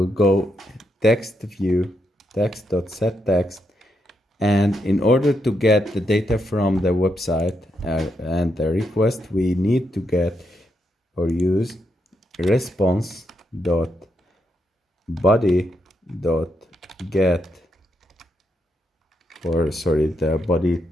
go text view text.setText, and in order to get the data from the website and the request, we need to get or use response dot body dot get, or sorry, the body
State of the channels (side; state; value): both; normal; correlation 0.81